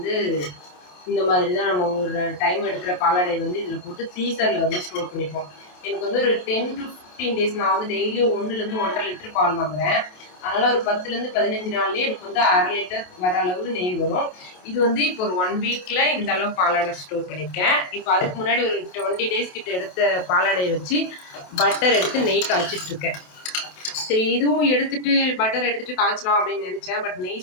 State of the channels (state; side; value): late; right; 28 ms